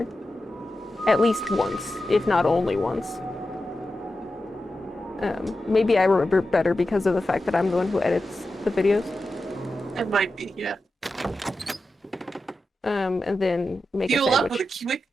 at least once, if not only once. Maybe I remember better because of the fact that I'm the one who edits the videos. It might be, yeah. And then make Fuel a sandwich. up with a quick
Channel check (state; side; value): normal; both; correlation 0.91